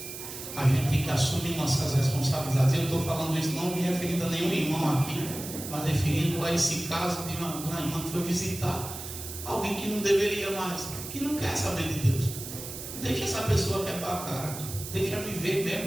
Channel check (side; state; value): right; noise; hiss, 9 dB below the sound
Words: A gente tem que assumir nossas responsabilidades. Eu estou falando isso não me referindo a nenhum irmão aqui, mas referindo a esse caso de uma irmã que foi visitar alguém que não deveria mais, que não quer saber de Deus. Deixa essa pessoa quebrar a cara, deixa viver